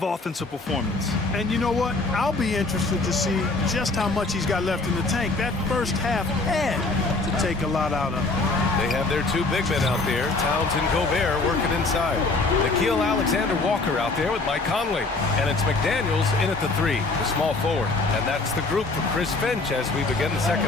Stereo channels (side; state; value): right; quieter; 3.5 dB